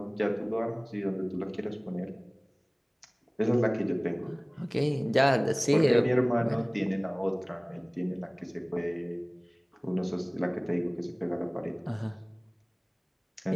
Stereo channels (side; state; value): both; identical; correlation 1.00